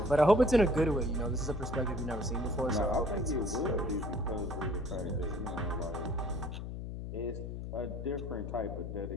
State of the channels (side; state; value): left; noise; hum, 6 dB below the sound